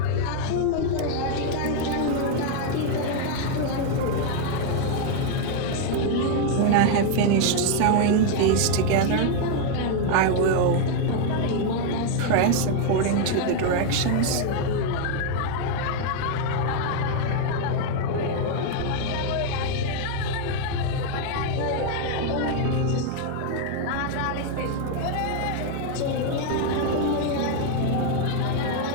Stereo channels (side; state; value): both; different; correlation 0.00